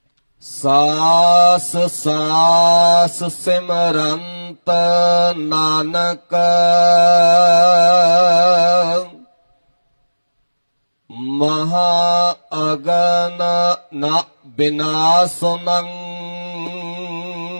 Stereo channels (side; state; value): both; inverted; correlation -1.00